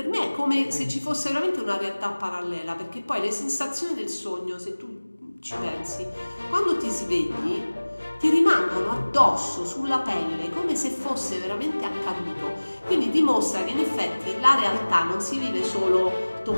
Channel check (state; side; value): inverted; both; correlation -1.00